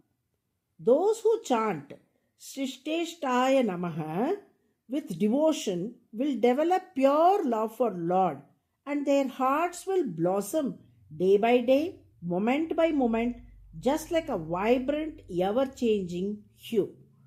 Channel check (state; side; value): identical; both; correlation 1.00